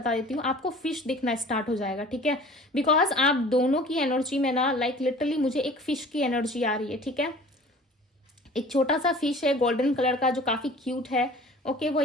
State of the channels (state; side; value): normal; both; correlation 0.45